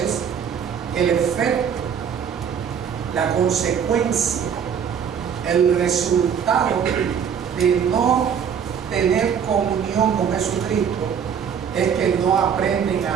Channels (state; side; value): quieter; left; 7.6 dB